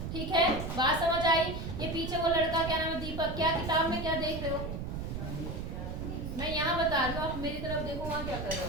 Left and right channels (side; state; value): right; noise; rumble, 5 dB below the sound